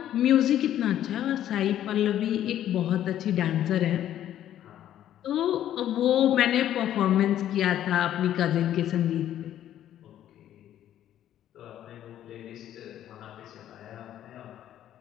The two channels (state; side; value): quieter; right; 11.5 dB